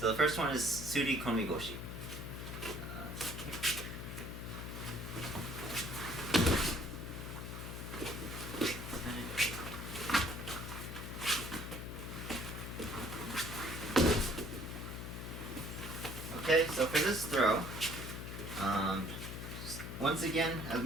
the first one is Sode Tsurikomi Goshi. Okay, so for this throw, once again, as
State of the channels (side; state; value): left; noise; hum, 7 dB below the sound